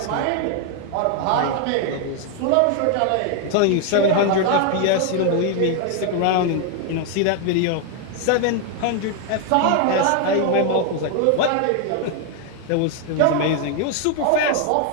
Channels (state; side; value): different; both; correlation 0.01